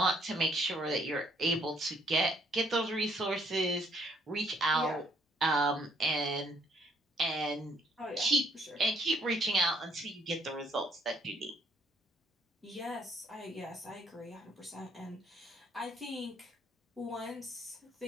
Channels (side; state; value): both; normal; correlation 0.66